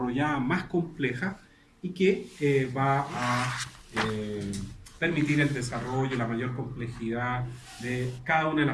más compleja, y que va a permitir el desarrollo, la mayor complejidad de cada una de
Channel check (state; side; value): identical; both; correlation 1.00